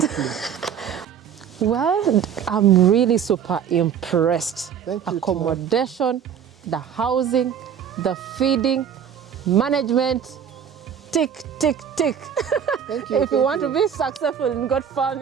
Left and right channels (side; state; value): left; quieter; 8.2 dB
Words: Well, I'm really super impressed. Thank you. Accommodation, the housing, the feeding, management, tick, tick, tick. Thank you. If you want to be successful in goat